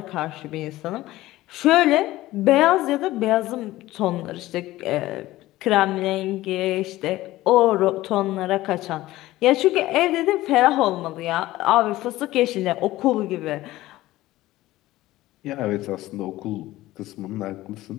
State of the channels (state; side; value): quieter; right; 16.7 dB